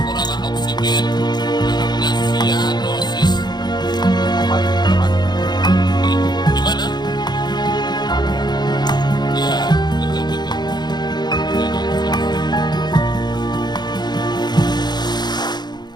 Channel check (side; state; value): right; late; 0.21 ms